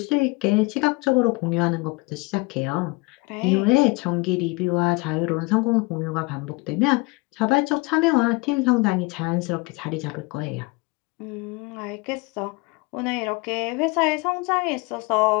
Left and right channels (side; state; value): right; quieter; 25.6 dB